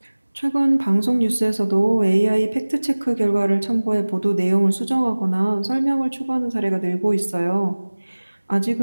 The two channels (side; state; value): both; inverted; correlation -1.00